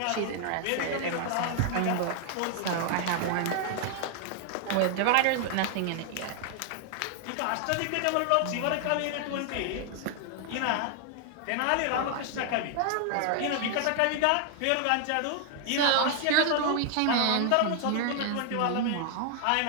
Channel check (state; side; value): different; both; correlation 0.00